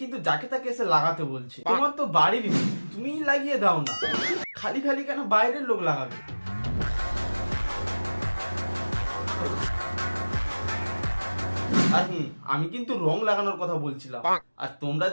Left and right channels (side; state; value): both; inverted; correlation -1.00